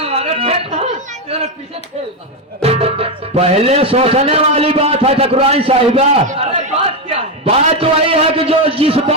पहले सोचने वाली बात है ठकुराइन साहिबा। अरे बात क्या है? बात वही है कि जो जिस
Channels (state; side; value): normal; both; correlation 0.07